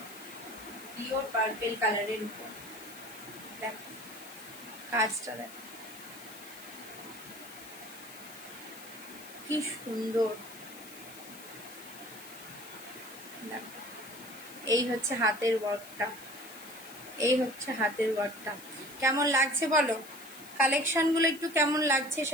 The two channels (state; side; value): noise; left; hiss, 16 dB below the sound